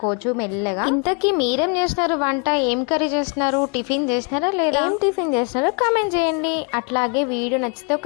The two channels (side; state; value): right; quieter; 35.1 dB